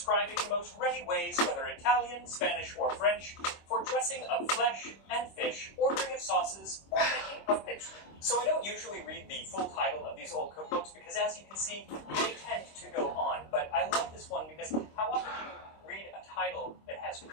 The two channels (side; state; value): right; late; 26 ms